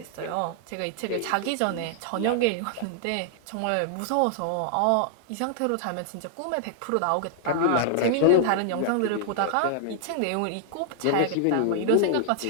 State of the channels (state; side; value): different; both; correlation -0.01